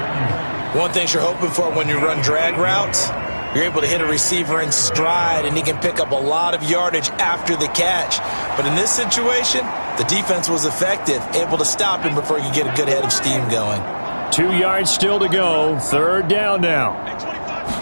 One thing you're hoping for when you run drag routes, you're able to hit a receiver in stride, and he can pick up a lot of yardage after the catch. But in this situation, the defense was effective, able to stop him before you get a good head of steam going. 2 yards still to go. 3rd down now.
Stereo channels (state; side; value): inverted; both; correlation -1.00